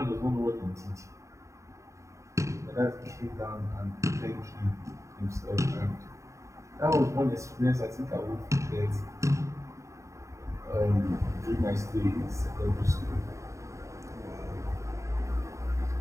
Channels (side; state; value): left; late; 0.15 ms